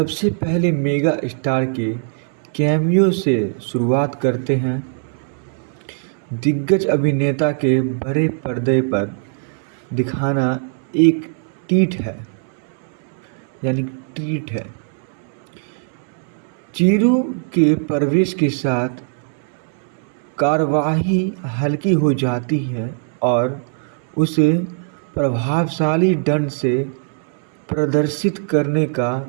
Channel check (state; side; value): silent; left; 62 dB below the other